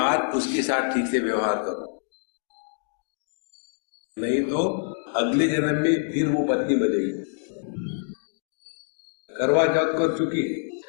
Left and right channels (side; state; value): right; silent; digital silence